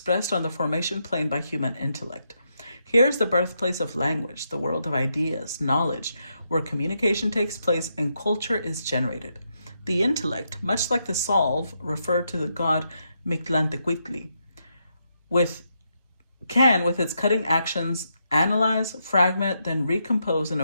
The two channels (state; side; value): inverted; both; correlation -0.81